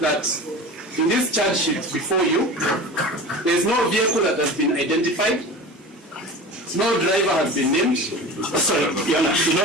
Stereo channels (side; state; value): both; normal; correlation 0.33